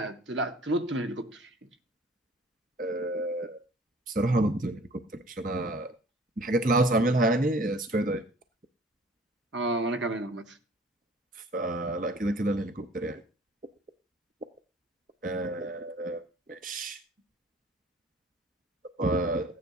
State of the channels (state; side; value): normal; both; correlation 0.51